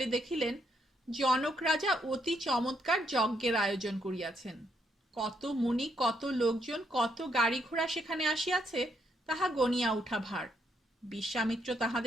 দেখিলেন জনক রাজা অতি চমৎকার যজ্ঞের আয়োজন করিয়াছেন। কত মুনি, কত লোকজন, কত গাড়ি ঘোড়া সেখানে আসিয়াছে তাহা গনিয়া উঠা ভার। বিশ্বামিত্র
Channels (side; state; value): both; normal; correlation 0.75